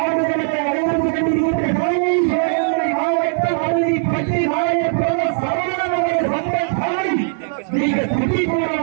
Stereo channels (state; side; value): silent; left; digital silence